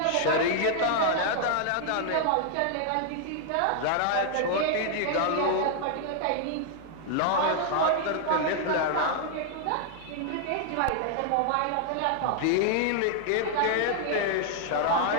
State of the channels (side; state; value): both; different; correlation 0.00